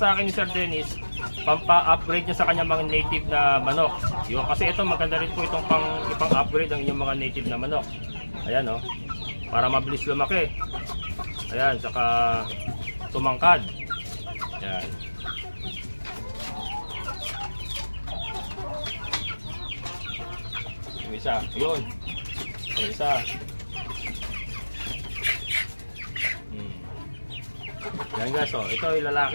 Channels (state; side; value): inverted; both; correlation -1.00